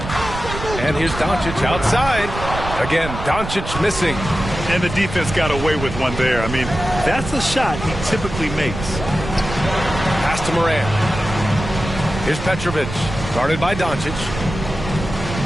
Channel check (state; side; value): noise; right; rumble, 8 dB below the sound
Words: And here's Doncic outside. Again, Doncic missing. And the defense got away with one there. I mean, that's a shot he typically makes. Pass to Morant. Here's Petrovic, guarded by Doncic.